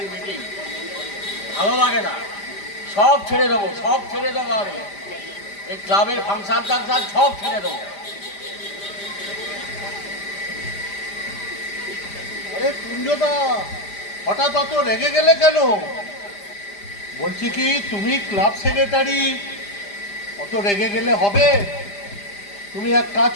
মিটিং। ভালো লাগে না, সব ছেড়ে দেবো, সব ছেড়ে দেবো। আমি এই ক্লাবের ফাংশন টাংশন সব ছেড়ে দেবো। আরে কুঞ্জদা, হঠাৎ অত রেগে গেলে কেন? বলছি কি, তুমি ক্লাব সেক্রেটারি, অত রেগে গেলে হবে? তুমি এক কাজ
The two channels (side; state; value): right; late; 5.0 ms